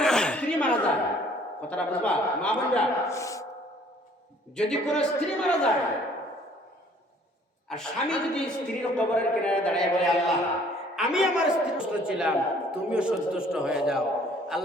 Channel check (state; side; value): normal; both; correlation 0.57